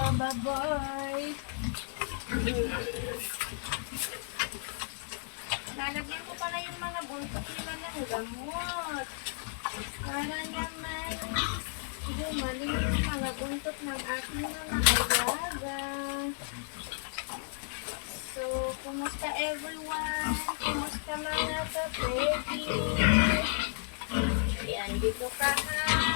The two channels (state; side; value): silent; right; digital silence